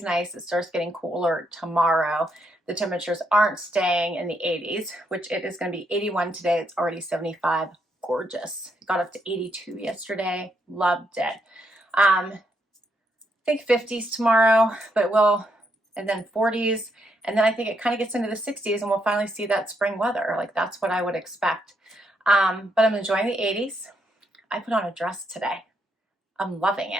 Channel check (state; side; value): normal; both; correlation 0.77